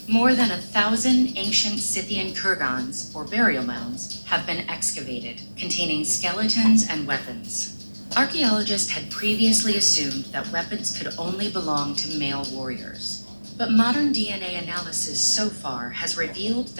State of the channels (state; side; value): inverted; both; correlation -1.00